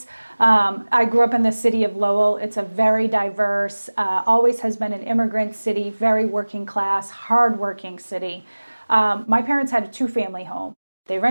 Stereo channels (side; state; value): both; inverted; correlation -1.00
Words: I grew up in the city of Lowell. It's a very diverse, always has been an immigrant city, very working class, hardworking city. My parents had a 2-family home. They